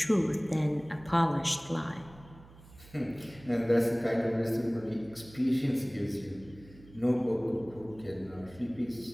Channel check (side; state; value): right; noise; hum, 21 dB below the sound